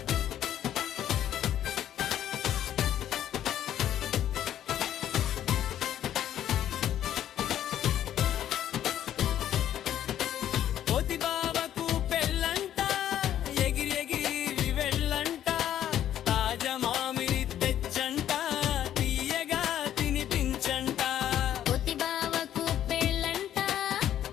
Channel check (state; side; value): quieter; right; 11.2 dB